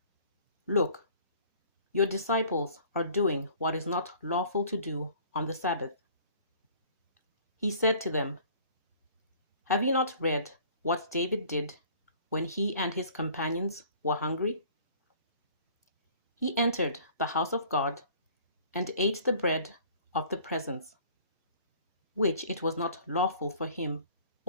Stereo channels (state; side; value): inverted; both; correlation -0.52